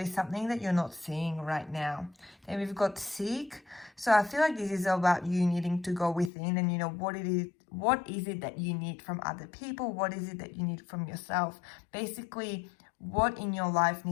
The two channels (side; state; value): right; drops out; at 6.3 s